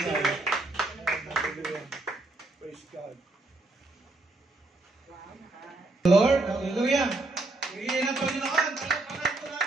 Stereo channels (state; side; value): quieter; left; 3.0 dB